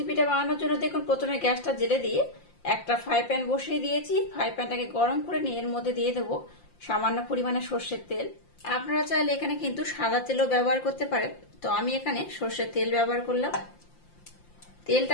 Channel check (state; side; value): late; right; 5.7 ms